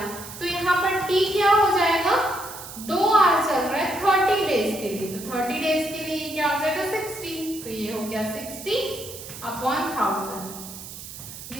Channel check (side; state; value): right; noise; hiss, 13 dB below the sound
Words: तो यहाँ पर T क्या हो जाएगा 2 आवर्स चल रहा है 30 डेज के लिए, तो 30 डेज के लिए क्या हो जाएगा 60, तो ये हो गया 60 अपॉन 1000।